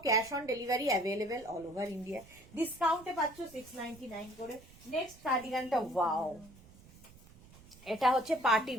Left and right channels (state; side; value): noise; right; rumble, 22 dB below the sound